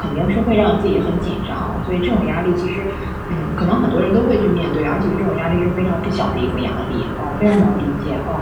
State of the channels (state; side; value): identical; both; correlation 1.00